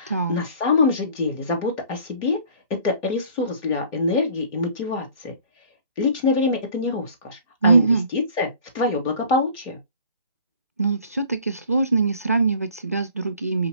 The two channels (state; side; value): inverted; both; correlation -0.50